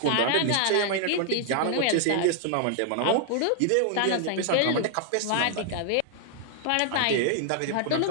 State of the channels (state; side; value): different; both; correlation -0.01